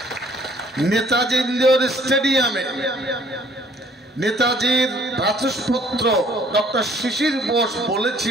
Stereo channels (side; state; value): both; normal; correlation 0.59